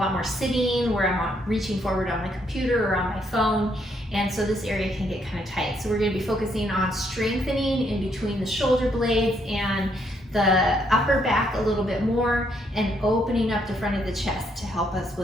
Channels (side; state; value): both; normal; correlation 0.73